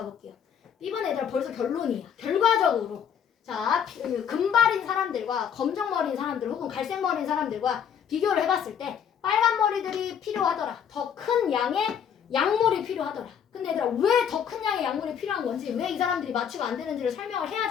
B번 얘들아 벌써 결론이야. 결과적으로 자 금발인 사람들과 검정머리인 사람들 혹은 갈색머리인 사람들과 비교를 해봤을 때 빨간 머리들이 필요하더라. 더 큰 양의 약물이 필요하더라. 근데 얘들아 왜 더 큰 양의 약물이 필요한 건지 왜 이 사람들이 마취가 안 되는지를 설명을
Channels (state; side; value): quieter; right; 8.1 dB